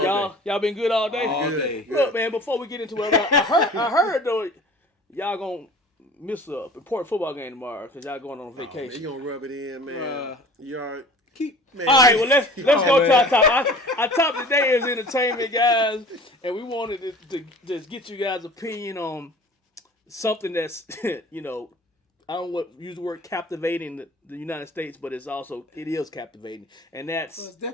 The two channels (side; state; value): both; normal; correlation 0.44